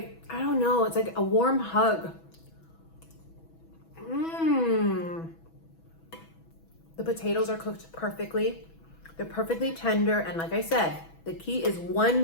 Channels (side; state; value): right; late; 6.1 ms